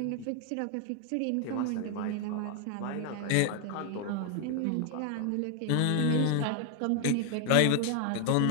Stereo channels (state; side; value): different; both; correlation 0.00